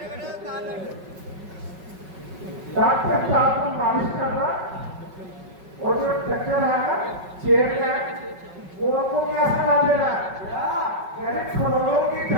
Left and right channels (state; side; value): late; left; 5.3 ms